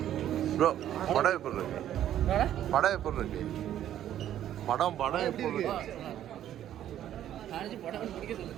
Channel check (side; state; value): left; quieter; 11.4 dB